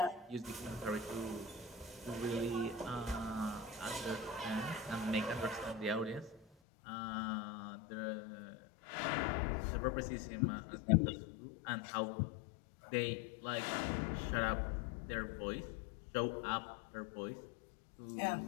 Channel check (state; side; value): drops out; right; at 6.5 s